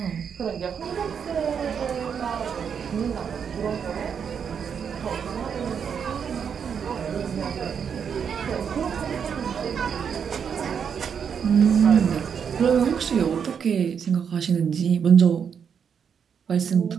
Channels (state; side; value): quieter; left; 7.2 dB